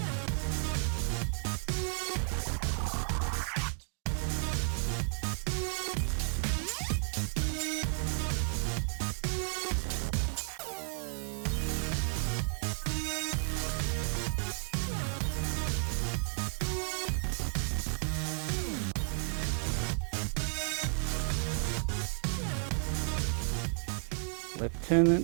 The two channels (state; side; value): silent; left; 56 dB below the other